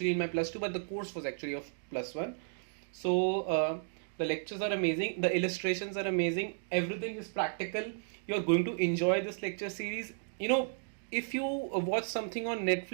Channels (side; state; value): left; silent; digital silence